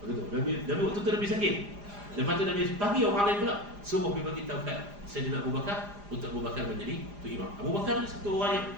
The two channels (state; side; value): late; left; 4.9 ms